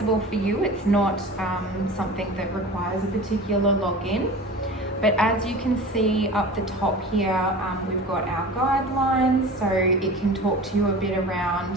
for you. It's not something that requires a particular login. But as you can see up the top here, we've got our guidelines, so it can talk to you a bit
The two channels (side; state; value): both; normal; correlation 0.36